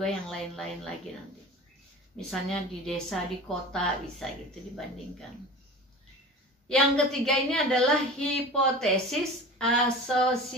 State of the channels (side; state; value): both; normal; correlation 0.36